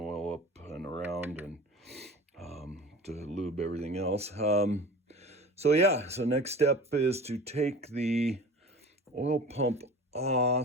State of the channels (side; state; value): both; normal; correlation 0.39